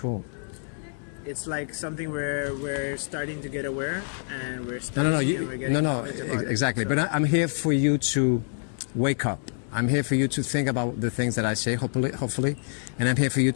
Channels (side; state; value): right; silent; digital silence